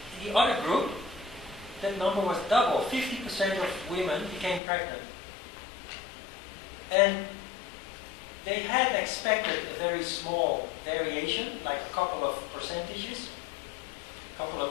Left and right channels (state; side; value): drops out; right; at 4.6 s